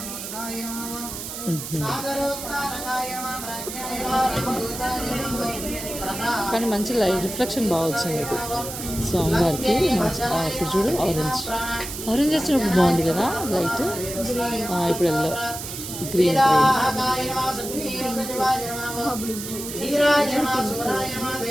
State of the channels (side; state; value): right; noise; hiss, 8 dB below the sound